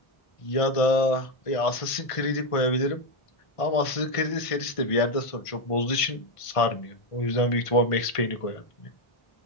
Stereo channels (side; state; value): right; late; 1.5 ms